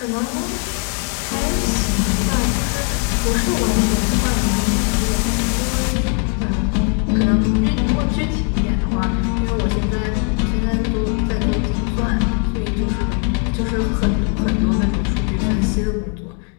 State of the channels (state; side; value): quieter; right; 38.8 dB